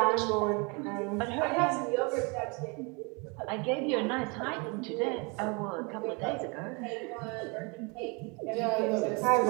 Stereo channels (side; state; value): left; quieter; 30.8 dB